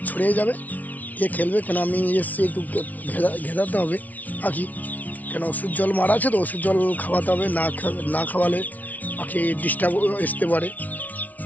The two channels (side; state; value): right; late; 0.075 ms